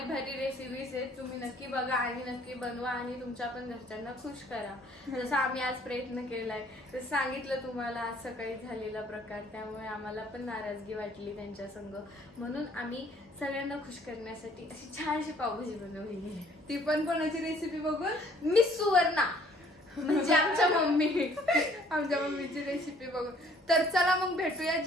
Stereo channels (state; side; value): normal; both; correlation 0.59